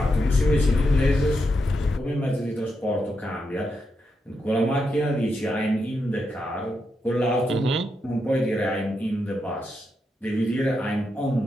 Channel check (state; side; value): normal; both; correlation 0.84